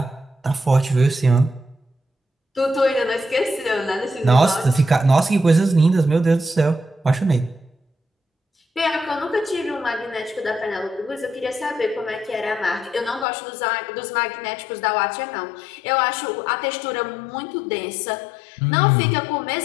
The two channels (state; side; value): drops out; right; at 13.2 s